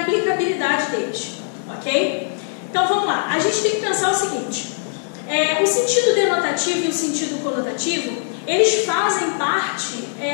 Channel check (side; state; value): right; silent; digital silence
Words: aplicabilidade deles, ok? Então vamos lá, a gente tem que pensar o seguinte, o sentido denotativo e o sentido conotativo, eles fazem parte